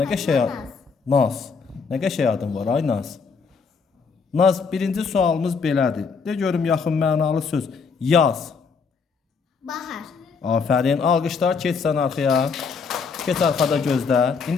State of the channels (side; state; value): right; quieter; 5.3 dB